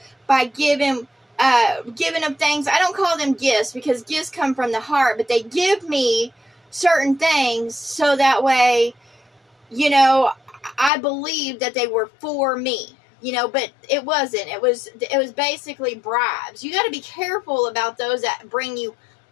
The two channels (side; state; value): right; drops out; at 10.9 s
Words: by giving them things. I don't call them gifts because gifts come from the heart, but they give me certain things so that way, I believe that they were for me, but it wasn't. It was basically bribes. You got to be careful about those that bring you